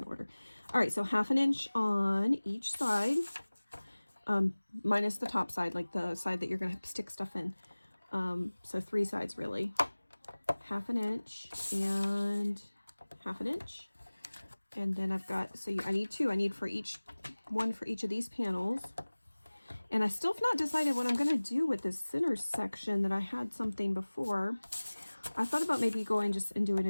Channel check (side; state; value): both; inverted; correlation -1.00